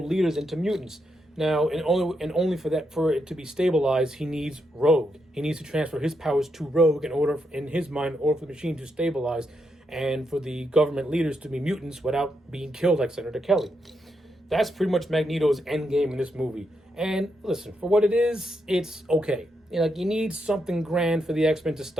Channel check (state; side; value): normal; both; correlation 0.81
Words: leaders into mutants. Now, and only for it to be stabilized, he needs Rogue. He needs to transfer his powers to Rogue in his mind, for the machine to stabilize, and for the government leaders to be mutants without being killed like Senator Kelly. That's pretty much Magneto's end game in this movie. And listen, for what it is, it's okay. You need something grand for the X-Men to